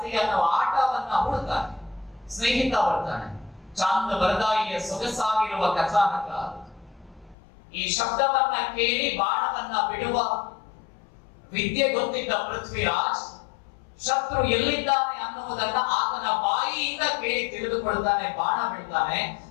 ಅನ್ನೋ ಆಟವನ್ನ ಹುಡುಕ್ತಾನೆ. ಸ್ನೇಹಿತ ಬರ್ತಾನೆ, ಚಾಂದ್ ಬರ್ದಾಯಿಯ ಸೊಗಸಾಗಿರುವ ಕಥಾನಕ. ಈ ಶಬ್ದವನ್ನ ಕೇಳಿ ಬಾಣವನ್ನ ಬಿಡುವ ವಿದ್ಯೆ ಗೊತ್ತಿದ್ದ ಪೃಥ್ವಿರಾಜ್ ಶತ್ರು ಎಲ್ಲಿದ್ದಾನೆ ಅನ್ನುವುದನ್ನ ಆತನ ಬಾಯಿಯಿಂದ ಕೇಳಿ ತಿಳಿದುಕೊಳ್ತಾನೆ, ಬಾಣ ಬಿಡ್ತಾನೆ.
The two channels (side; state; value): right; drops out; at 7.4 s